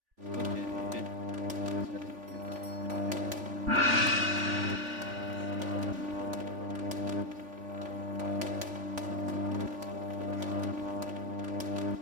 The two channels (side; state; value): left; late; 3.4 ms